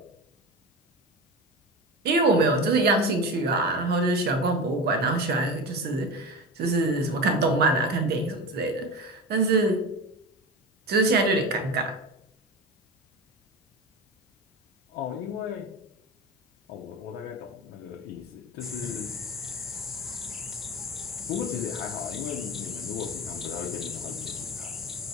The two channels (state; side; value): normal; both; correlation 0.27